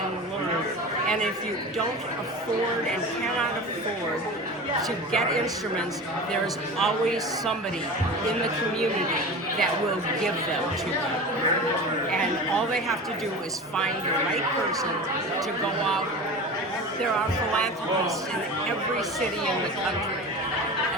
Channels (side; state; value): both; normal; correlation 0.32